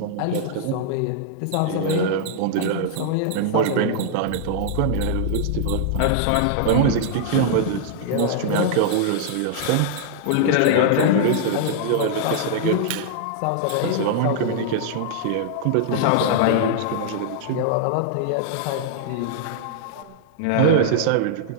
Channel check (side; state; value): both; different; correlation -0.01